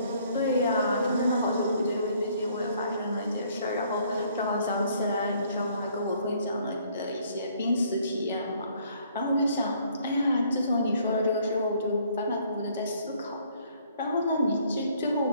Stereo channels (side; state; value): both; inverted; correlation -0.63